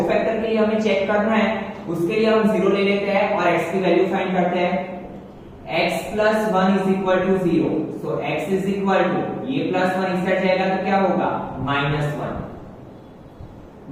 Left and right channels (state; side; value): identical; both; correlation 1.00